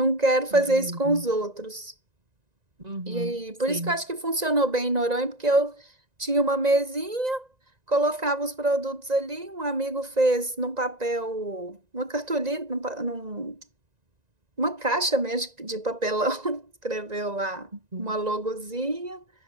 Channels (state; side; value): late; left; 1.9 ms